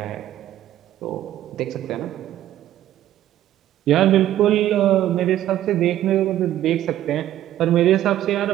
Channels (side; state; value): left; quieter; 12.7 dB